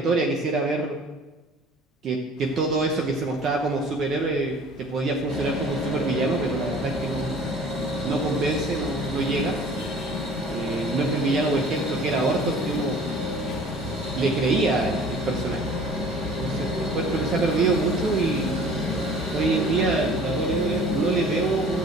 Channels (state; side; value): normal; both; correlation 0.48